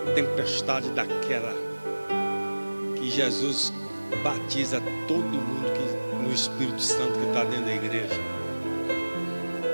daquela que Jesus batiza todo mundo no Espírito Santo que está dentro da igreja.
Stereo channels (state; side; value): inverted; both; correlation -1.00